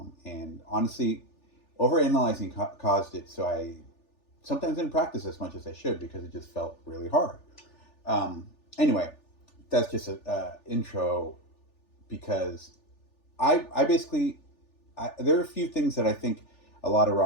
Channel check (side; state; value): right; late; 3.4 ms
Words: honestly, overanalyzing caused it. So I sometimes didn't practice as much as I should because it just felt really hard. Anyway, that's just a intro because I basically there are a few things that I think a lot of